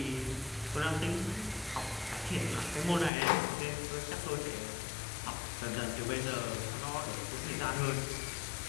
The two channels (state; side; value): drops out; right; at 3.1 s